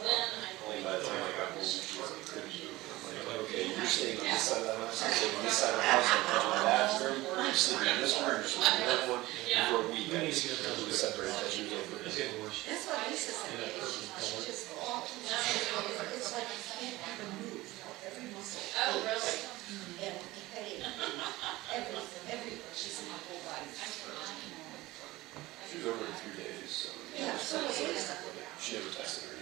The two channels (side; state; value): left; quieter; 19.0 dB